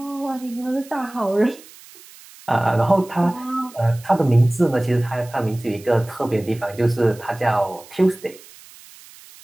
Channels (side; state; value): right; noise; hiss, 21 dB below the sound